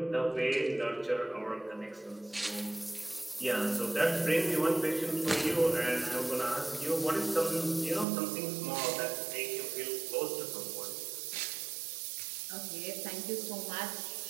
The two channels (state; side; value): drops out; left; at 8.1 s